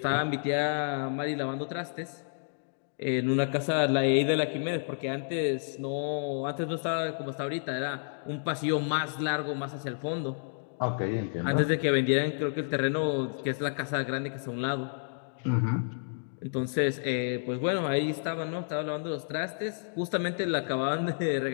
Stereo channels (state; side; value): silent; right; digital silence